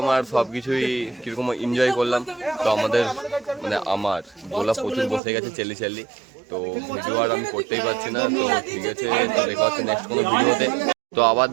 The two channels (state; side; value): drops out; left; at 5.2 s